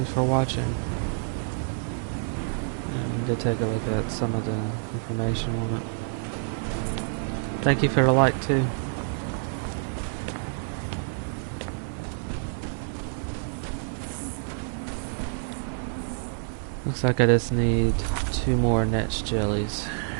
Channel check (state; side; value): silent; left; digital silence